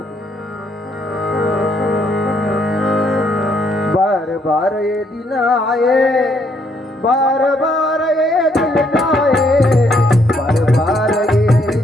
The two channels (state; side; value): normal; both; correlation 0.70